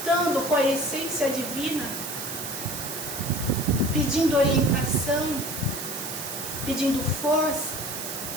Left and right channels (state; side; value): noise; right; hiss, 6 dB below the sound